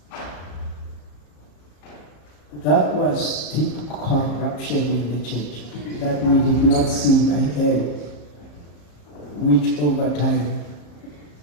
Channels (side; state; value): right; late; 34 ms